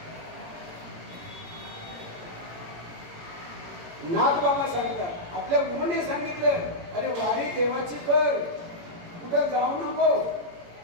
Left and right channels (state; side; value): late; left; 18 ms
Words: नाथ बाबा सांगतात. आपल्या गुरुने सांगितलं अरे वारी देवाची कर, कुठं जाऊ नको,